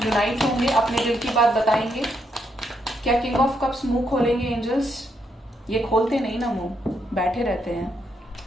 होंगे, अपने दिल की बात बताएंगे। क्या किंग ऑफ कप्स मुंह खोलेंगे एंजल्स, ये खोलते नहीं ना मुंह, बैठे रहते हैं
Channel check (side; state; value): both; normal; correlation 0.78